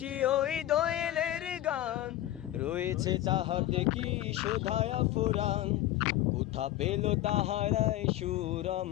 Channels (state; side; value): quieter; right; 14.2 dB